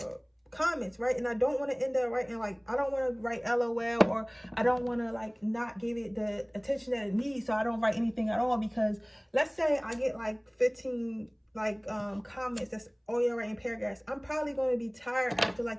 comments, right? And I don't want to end up writing like, I don't want to write LOL, or I don't want to like not give it the attention that it needs, so I don't write anything at all. Because let's say I get like 15 like comments that's all y'all writing paragraphs, I'm probably going to be tired after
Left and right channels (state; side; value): identical; both; correlation 1.00